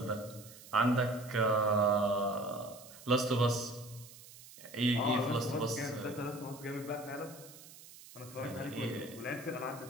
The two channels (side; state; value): right; noise; hiss, 18 dB below the sound